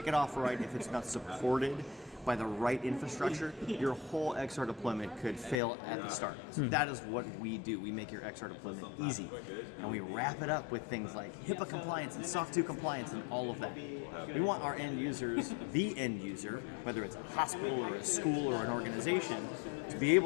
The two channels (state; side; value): drops out; right; at 5.6 s